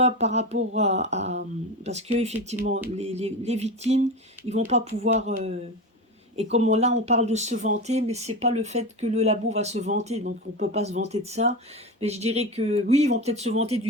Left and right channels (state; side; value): normal; both; correlation 0.23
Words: par rapport parce que effectivement, les victimes, ils vont pas pouvoir et comme là, on parle de se vanter, mais c'est pas le fait que le labo va se vanter, donc on peut pas se vanter de ça. Mais je dirais que oui, ils vont peut-être se vanter